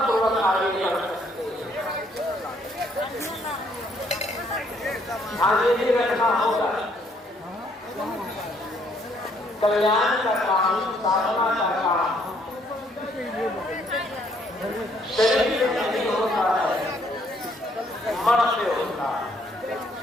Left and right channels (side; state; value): both; normal; correlation 0.67